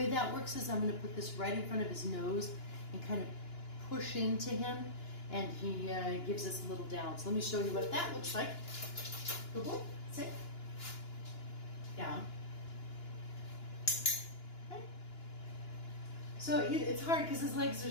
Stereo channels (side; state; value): right; late; 2.9 ms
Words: that works is I'm going to put this right in front of his nose and kind of push into him, and he gives us a little down. So let me show you what that looks like. Good boy. Sit. Down. Okay. So it's hard because his legs are